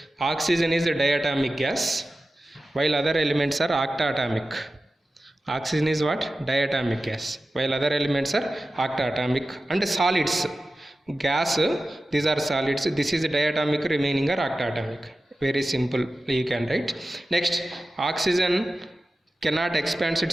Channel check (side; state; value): both; normal; correlation 0.94